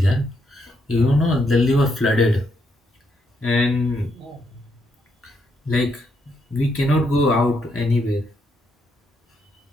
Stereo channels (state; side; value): normal; both; correlation 0.77